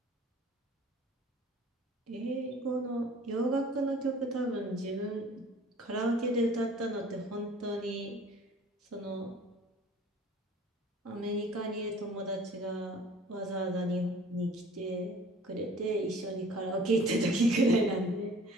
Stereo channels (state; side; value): normal; both; correlation 0.49